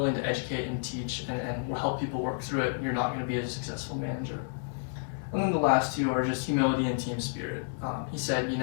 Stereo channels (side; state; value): right; silent; digital silence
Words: to educate and teach and help people work through it, you're not going to be a successful manager. And then the last two are just humility and team spirit. He said,